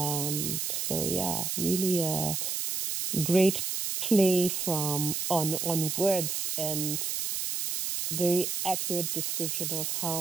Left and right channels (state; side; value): noise; right; hiss, 1 dB below the sound